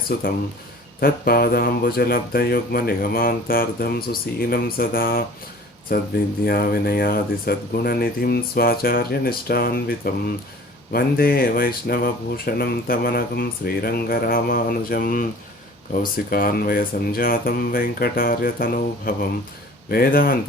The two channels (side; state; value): both; normal; correlation 0.46